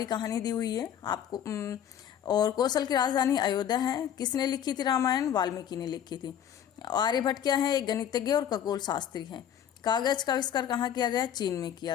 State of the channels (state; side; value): quieter; right; 9.5 dB